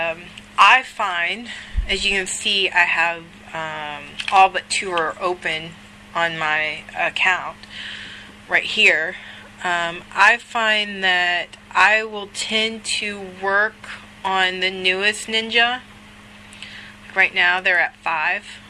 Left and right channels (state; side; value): identical; both; correlation 1.00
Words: find, as you can see, I have all but 2 are open on my account right here. I find that I will tend to work on the newest ninja. Right now they're at 5